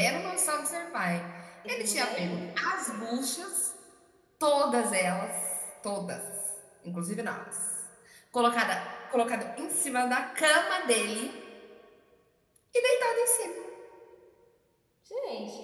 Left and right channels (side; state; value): both; identical; correlation 1.00